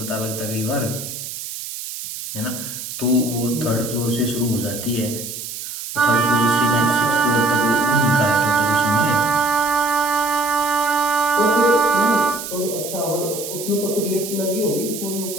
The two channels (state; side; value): noise; right; hiss, 8 dB below the sound